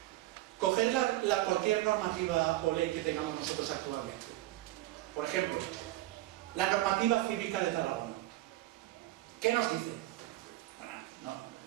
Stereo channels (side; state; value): left; quieter; 16.6 dB